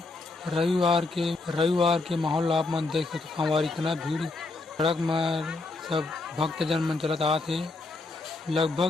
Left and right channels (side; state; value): right; quieter; 3.4 dB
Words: रविवार के माहौल आप मन देख सकते संगवारी, इतना भीड़ सड़क में सब भक्तजन मन चलत आते।